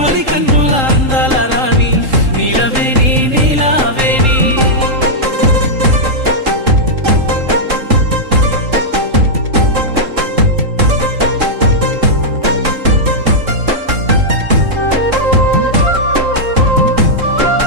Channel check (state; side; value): late; left; 3.7 ms